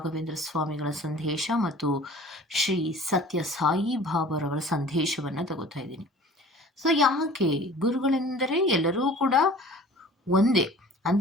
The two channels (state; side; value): normal; both; correlation 0.45